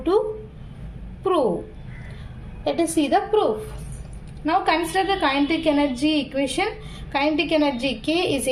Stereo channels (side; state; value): both; identical; correlation 1.00